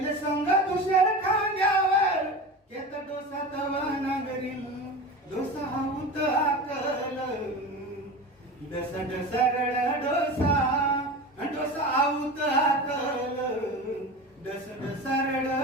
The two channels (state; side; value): normal; both; correlation 0.30